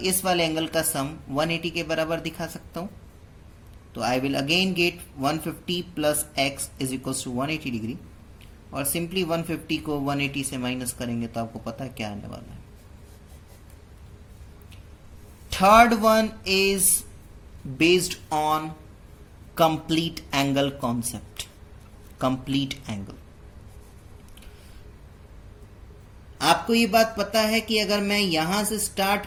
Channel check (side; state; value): both; identical; correlation 1.00